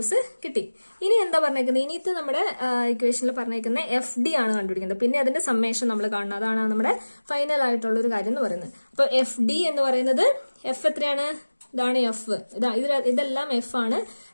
കിട്ടി. ഇനി എന്താ പറഞ്ഞേക്കുന്നത്? ഇനിത്തെ നമ്മുടെ ഇക്വേഷനിൽ പറഞ്ഞേക്കുന്ന എഫ് ഡി ആണ് കണ്ടുപിടിക്കുന്നത്. പിന്നെ അതിന്റെ സമ്മേഷൻ നമ്മൾ കാണണം. അതാണ് നമ്മുടെ ഫൈനൽ ആയിട്ടുള്ള ഒരു കാര്യം എന്ന് പറയുന്നത്. അപ്പൊ എഫ് ഡി എന്ന് പറയുന്നത് എഫ് എത്രയാണ്? ഇതാണ് എഫ്, ഇതെല്ലാം എഫ് ആണ്.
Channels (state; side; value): inverted; both; correlation -1.00